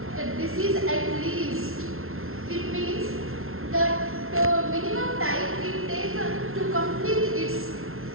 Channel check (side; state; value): left; late; 0.62 ms